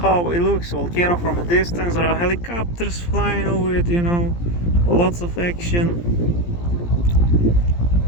it looks. Volcano from a distance. There are helicopters flying over it, lots of action.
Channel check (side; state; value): right; late; 17 ms